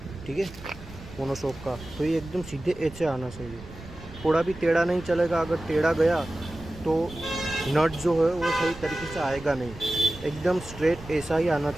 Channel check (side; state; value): right; noise; rumble, 16 dB below the sound